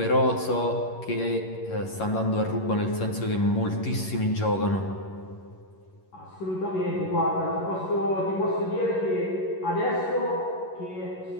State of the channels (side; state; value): right; late; 11 ms